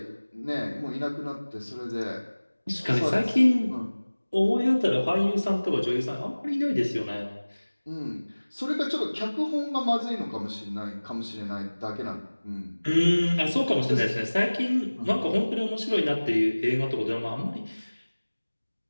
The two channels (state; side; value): inverted; both; correlation -1.00